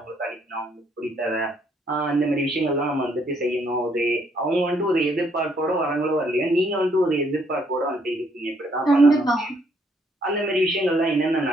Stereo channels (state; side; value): normal; both; correlation 0.69